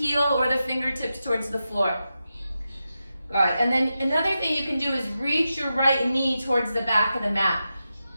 or the fingertips towards the floor. All right, and then another thing you can do is reach your right knee towards the back of the mat.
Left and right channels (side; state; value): both; inverted; correlation -0.90